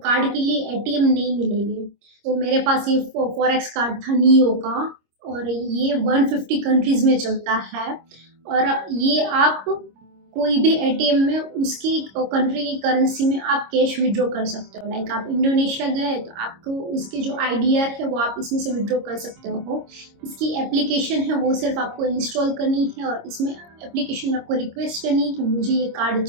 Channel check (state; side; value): late; left; 26 ms